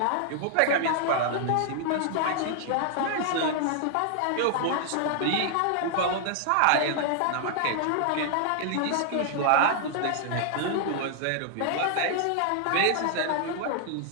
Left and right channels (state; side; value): different; both; correlation -0.01